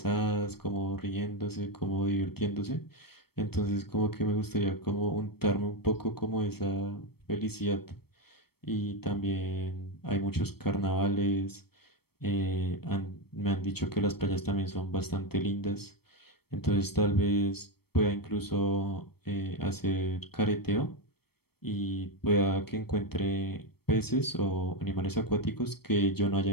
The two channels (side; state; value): right; late; 0.96 ms